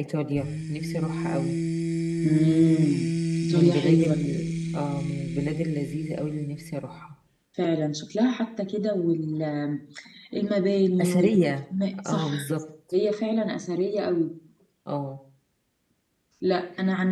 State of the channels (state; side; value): identical; both; correlation 1.00